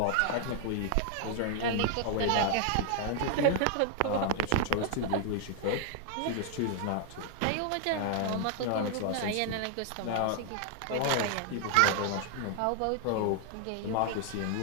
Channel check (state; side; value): different; both; correlation 0.00